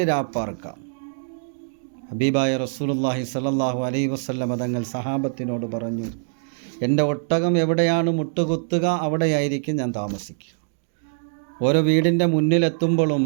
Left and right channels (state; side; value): silent; left; digital silence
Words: രാപ്പാർക്കാം. ഹബീബായ റസൂലുള്ളാഹി സ്വല്ലല്ലാഹു അലൈഹി വസല്ലം തങ്ങൾ സഹാബത്തിനോട് പറഞ്ഞു, എൻ്റെ ഒട്ടകം എവിടെയാണ് മുട്ടുകുത്തുക അവിടെയായിരിക്കും ഞാൻ താമസിക്കുക. ഓരോ വീടിൻ്റെ മുന്നിലെത്തുമ്പോഴും